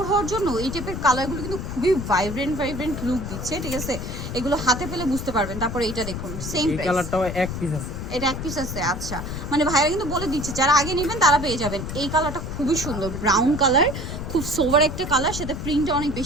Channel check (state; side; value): noise; left; rumble, 6 dB below the sound